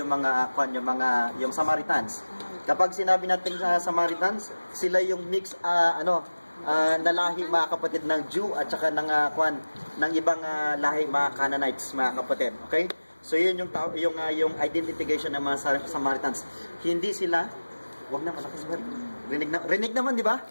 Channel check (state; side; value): inverted; both; correlation -1.00